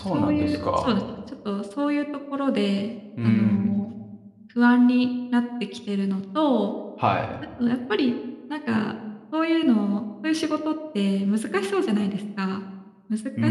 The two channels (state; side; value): identical; both; correlation 1.00